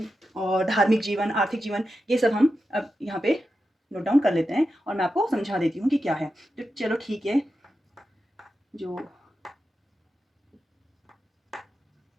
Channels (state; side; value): normal; both; correlation 0.90